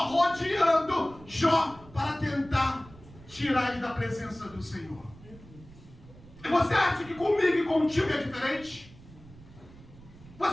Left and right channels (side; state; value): right; noise; rumble, 21 dB below the sound